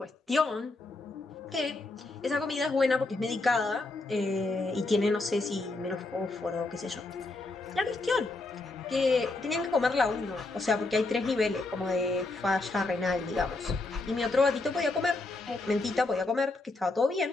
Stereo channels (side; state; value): right; quieter; 3.2 dB